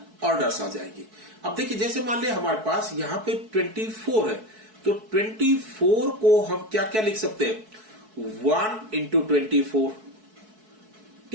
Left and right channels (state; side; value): late; left; 4.6 ms